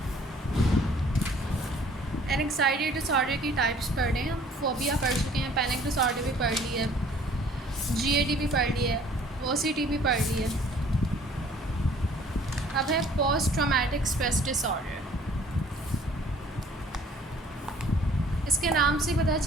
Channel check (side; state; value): both; normal; correlation 0.56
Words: एंग्जाइटी डिसऑर्डर की टाइप्स पढ़ रहे हैं हम। फोबिया पढ़ चुके हैं, पैनिक डिसऑर्डर भी पढ़ ली है, GAD भी पढ़ ली है, OCD भी पढ़ ली है। अब है पोस्ट ट्रॉमेटिक स्ट्रेस डिसऑर्डर। इसके नाम से पता